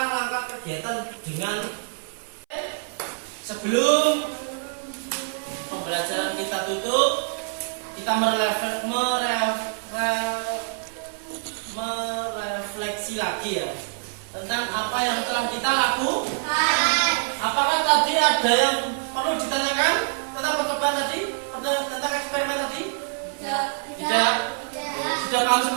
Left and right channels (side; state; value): left; silent; 59 dB below the other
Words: kegiatan dengan sebelum pembelajaran kita tutup, kita merefleksi lagi ya tentang apa yang telah kita lakukan. Apakah tadi ada yang perlu ditanyakan tentang percobaan tadi, tentang eksperimen tadi? Tidak. Sudah paham